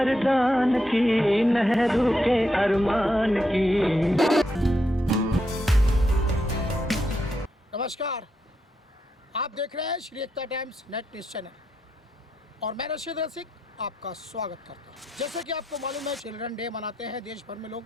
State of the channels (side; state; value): both; normal; correlation 0.82